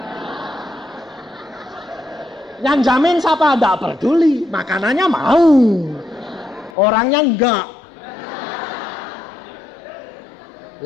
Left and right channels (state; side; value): drops out; right; at 6.7 s